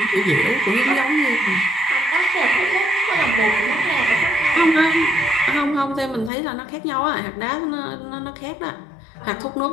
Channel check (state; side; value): drops out; right; at 6.3 s